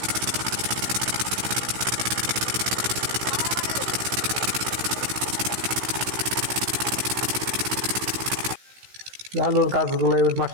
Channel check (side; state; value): left; late; 16 ms